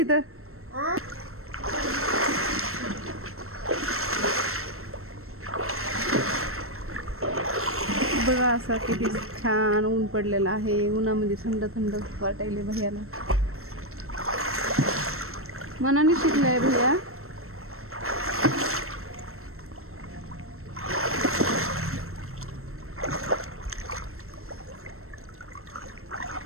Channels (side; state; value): left; late; 0.63 ms